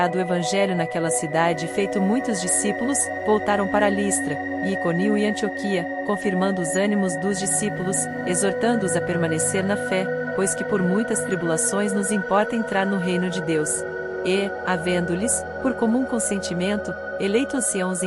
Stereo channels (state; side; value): identical; both; correlation 1.00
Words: o evangelho naquela cidade e feito muitos discípulos, voltaram para Listra, e Iconio e Antioquia, confirmando os ânimos dos discípulos, exortando-os a permanecer na fé, pois que por muitas tribulações nos importa entrar no reino de Deus. E, havendo-lhes, por comum consentimento, eleito anciãos